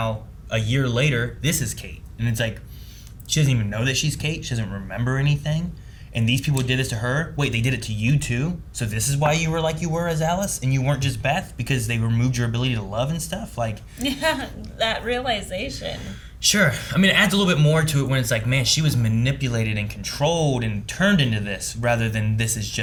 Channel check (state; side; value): identical; both; correlation 1.00